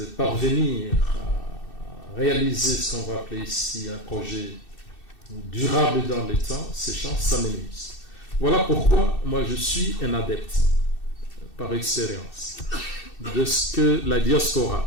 parvenir à réaliser ce qu'on va appeler ici un projet durable dans les temps, ces chances s'amenuisent. Voilà pourquoi moi je suis un adepte, par expérience, de ce que la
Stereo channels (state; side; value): late; right; 2.6 ms